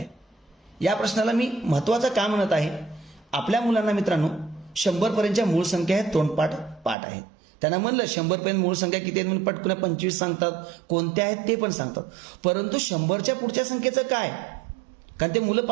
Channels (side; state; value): left; drops out; at 7.0 s